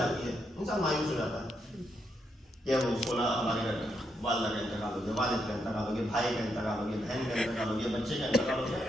ہے. انسان مایوس ہو جاتا ہے کہ وہ فلاں ہمارے گھر میں والدہ کا انتقال ہو گیا، والد کا انتقال ہو گیا، بھائی کا انتقال ہو گیا، بہن کا انتقال ہو گیا، بچے کا انتقال ہو گیا.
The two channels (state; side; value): normal; both; correlation 0.80